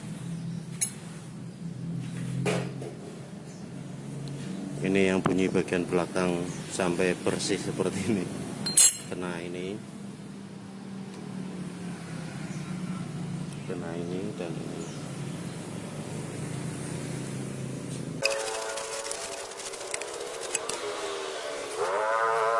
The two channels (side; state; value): both; identical; correlation 1.00